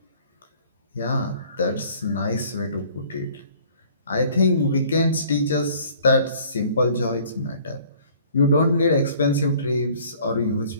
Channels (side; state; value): both; inverted; correlation -0.54